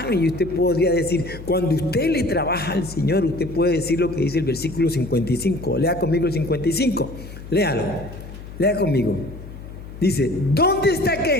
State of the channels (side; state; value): left; noise; hum, 14 dB below the sound